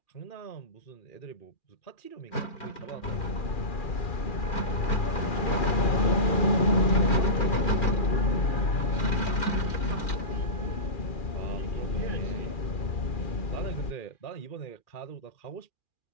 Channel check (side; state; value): right; late; 2.4 ms